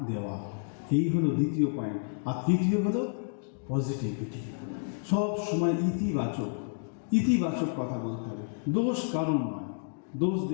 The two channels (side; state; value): right; silent; digital silence